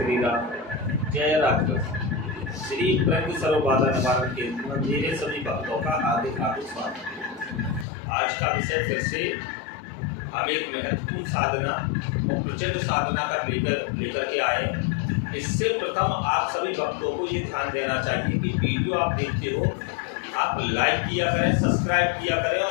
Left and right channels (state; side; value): drops out; right; at 7.9 s